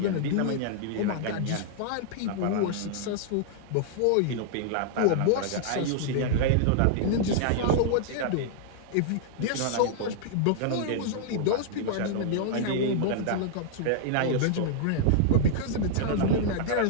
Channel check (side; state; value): both; different; correlation -0.01